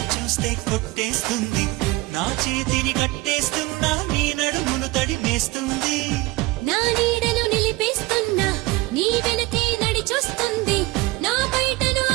చూస్తే కొట్టేస్తుంది నా చేతిని కట్టేస్తున్నా నీ నడుమును తడిమేస్తుంది నా నీడను నిలిపేస్తున్నా నీ వెనకే నడిచొస్తుంది నా బయటను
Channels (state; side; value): quieter; left; 20.8 dB